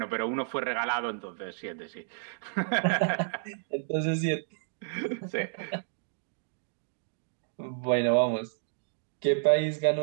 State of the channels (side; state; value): left; silent; digital silence